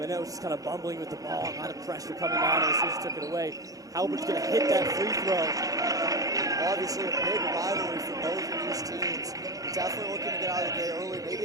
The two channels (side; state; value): left; late; 0.17 ms